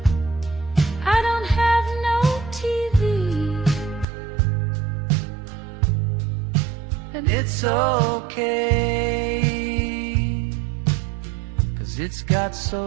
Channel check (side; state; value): left; drops out; at 4.0 s